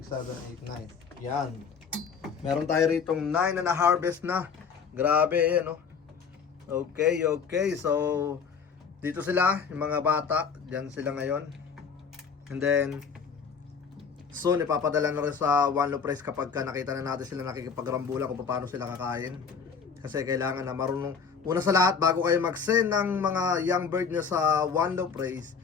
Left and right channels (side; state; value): right; quieter; 6.0 dB